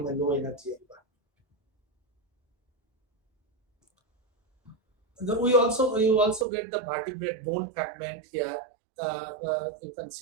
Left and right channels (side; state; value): left; drops out; at 6.5 s